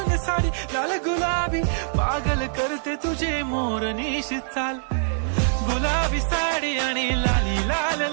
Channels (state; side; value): silent; left; 63 dB below the other